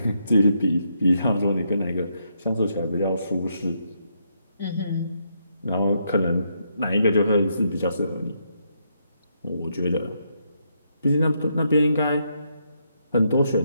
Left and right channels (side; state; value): both; inverted; correlation -0.77